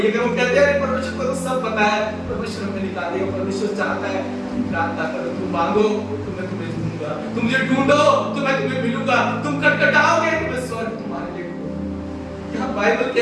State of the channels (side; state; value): both; identical; correlation 1.00